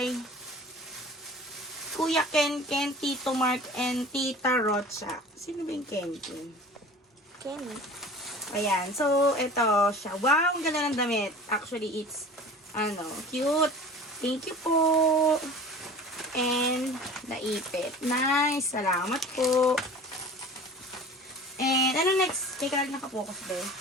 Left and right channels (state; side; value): normal; both; correlation 0.41